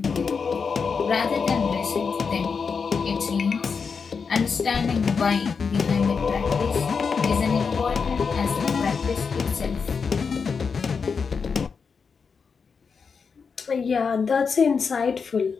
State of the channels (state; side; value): quieter; right; 5.6 dB